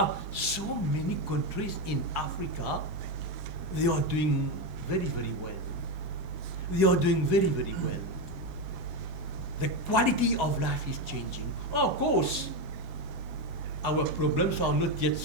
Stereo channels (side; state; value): left; late; 21 ms